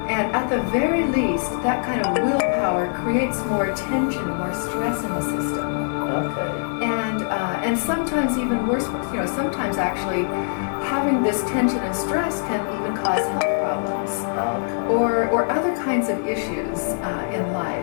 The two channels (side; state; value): right; silent; digital silence